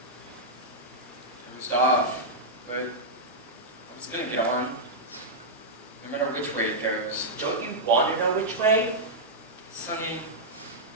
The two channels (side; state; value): both; normal; correlation -0.08